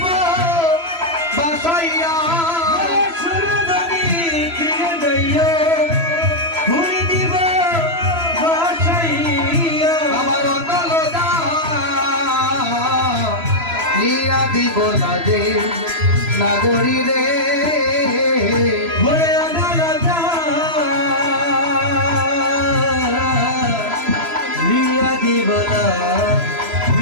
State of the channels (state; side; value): late; left; 3.0 ms